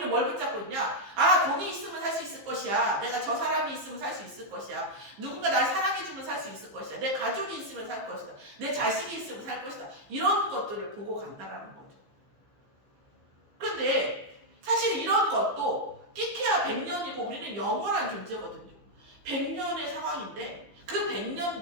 뭘 붙잡고 있냐? 아, 돈이 있으면 살 수 있을 것이야. 내가 저 사람이 있으면 살 수 있을 것이야. 누군가 날 사랑해주면 살 수 있을 것이야. 내 가족이 있으면 살 것이다. 내 자식이 있으면 살 것이다. 이런 것들을 보고 간다라는 거죠. 그런데 사실 이런 것도 끼케야 100년이고 우리는 영원한 존재거든요. 100년의 상황인데 그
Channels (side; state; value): left; late; 15 ms